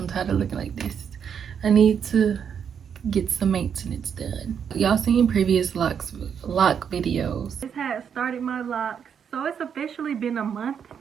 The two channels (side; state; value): left; quieter; 7.6 dB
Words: tired of looking like this. I need to get some maintenance done. Y'all seen previous lock videos. This had started my locks, so it's officially been a month